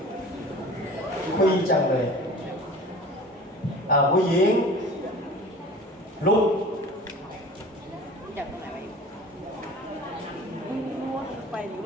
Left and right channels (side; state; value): both; normal; correlation 0.41